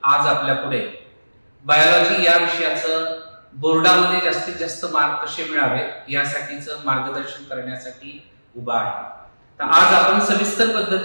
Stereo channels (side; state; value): both; inverted; correlation -1.00